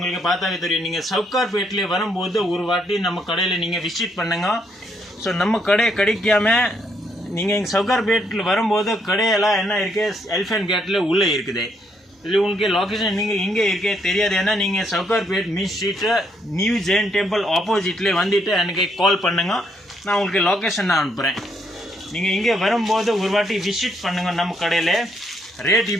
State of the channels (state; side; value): normal; both; correlation 0.73